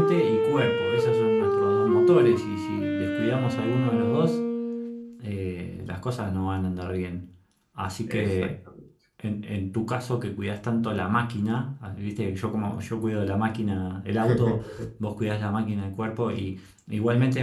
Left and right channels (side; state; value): both; identical; correlation 1.00